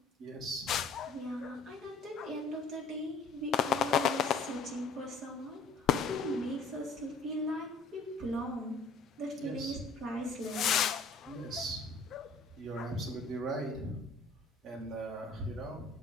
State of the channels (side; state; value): right; quieter; 3.9 dB